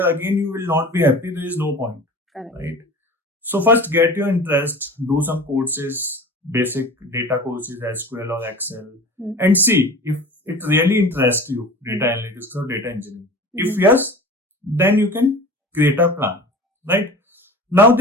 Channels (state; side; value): normal; both; correlation 0.38